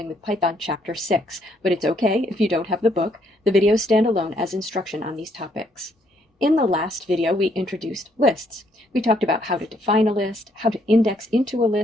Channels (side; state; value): both; normal; correlation 0.70